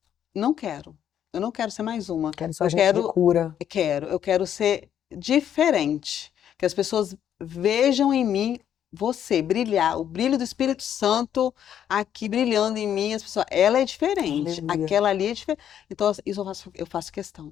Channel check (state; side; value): quieter; right; 9.7 dB